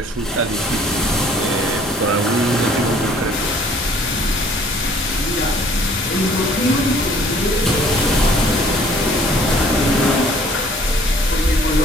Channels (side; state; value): both; normal; correlation 0.56